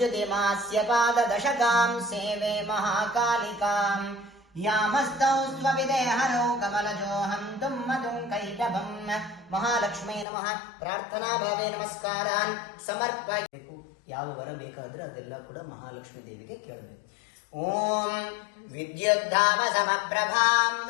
पाददशकां सेवे महाकालिकां यामस्तौ स्वविदेहनो कमलजोऽहं तुम्मधुं कैटभं महालक्ष्मी नमः प्रार्थना भावे नमस्कारान् समर्पयेಕು ಯಾವ ವರ ಬೇಕಾದ್ರೆ ಅದೆಲ್ಲ ಕೂಡ ಮಹಾಲಕ್ಷ್ಮಿ ದೇವಿಗೆ ಕೇಳಬೇಕು ಓಂ ವಿದ್ಯುದ್ಧಾಮ ಸಮಪ್ರಭಾಂ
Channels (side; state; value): right; drops out; at 10.2 s